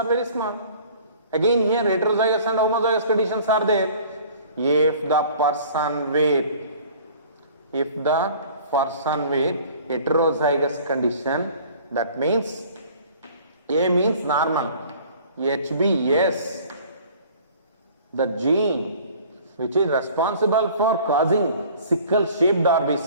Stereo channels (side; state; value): both; inverted; correlation -0.49